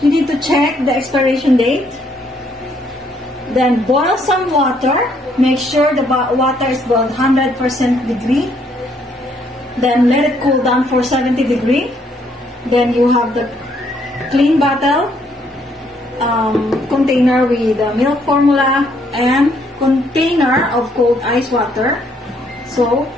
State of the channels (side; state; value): both; normal; correlation 0.69